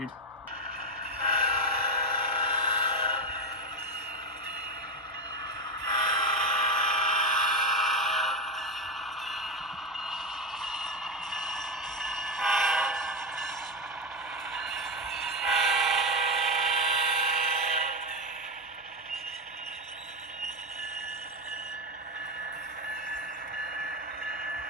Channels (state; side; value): normal; both; correlation 0.12